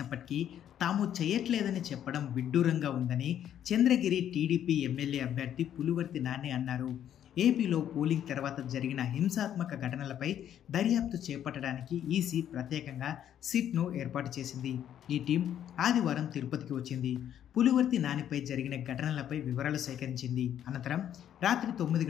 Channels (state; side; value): quieter; right; 10.3 dB